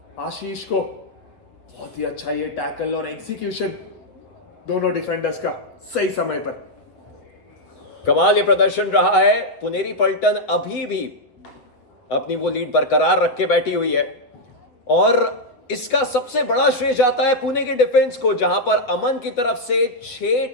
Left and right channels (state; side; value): late; right; 7.9 ms